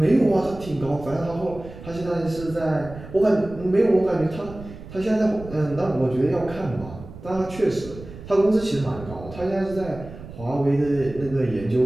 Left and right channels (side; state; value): right; noise; rumble, 14 dB below the sound